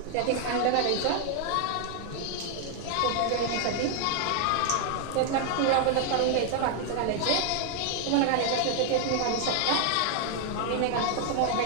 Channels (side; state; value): both; different; correlation 0.00